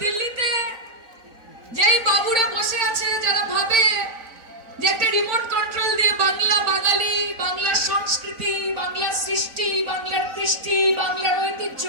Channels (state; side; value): late; left; 4.0 ms